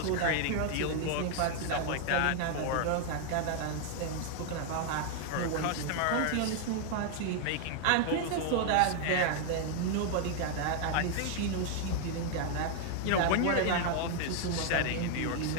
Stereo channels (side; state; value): both; different; correlation 0.00